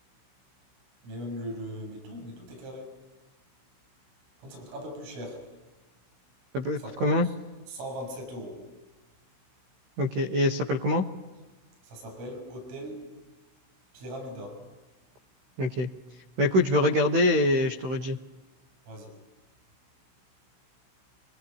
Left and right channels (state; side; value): late; left; 16 ms